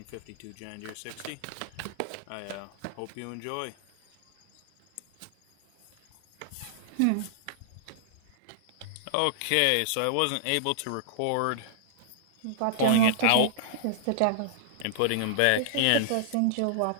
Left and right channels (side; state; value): both; different; correlation -0.01